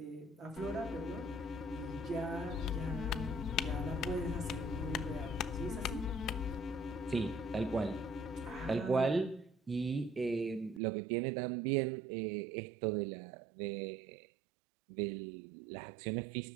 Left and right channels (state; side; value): drops out; left; at 10.8 s